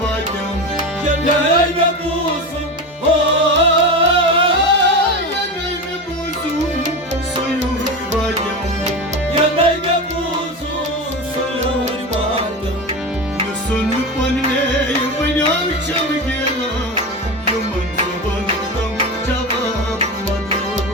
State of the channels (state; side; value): normal; both; correlation 0.23